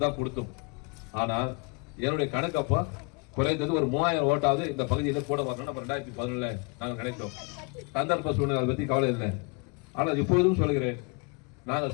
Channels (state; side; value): quieter; right; 32.9 dB